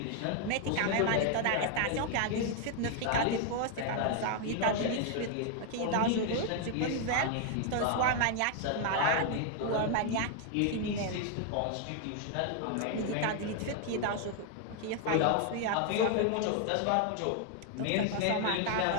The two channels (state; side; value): different; both; correlation 0.00